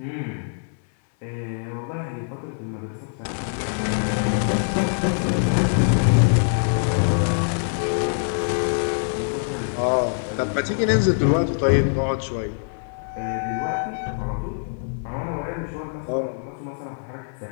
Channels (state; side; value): silent; right; 63 dB below the other